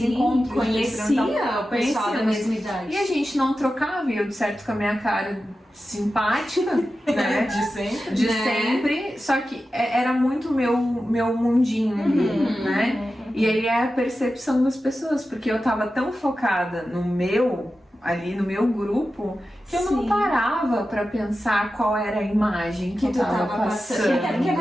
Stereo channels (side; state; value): both; normal; correlation 0.92